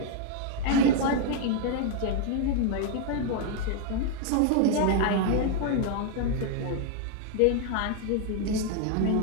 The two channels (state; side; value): different; both; correlation 0.00